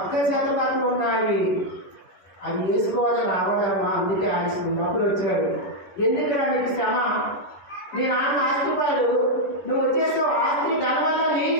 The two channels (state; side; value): late; right; 11 ms